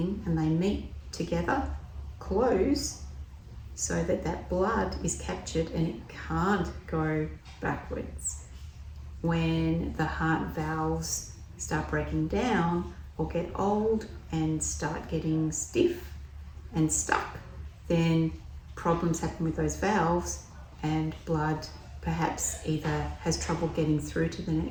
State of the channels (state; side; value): identical; both; correlation 1.00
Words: and they meet together, close, so that that blood is captured and it can't go backwards. When the heart valves start breaking down or get old and start getting stiff and stuck, then problems happen with those valves, and blood perhaps either has trouble getting through to the